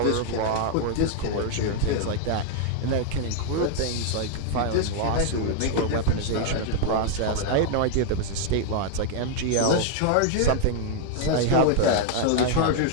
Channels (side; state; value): both; different; correlation 0.00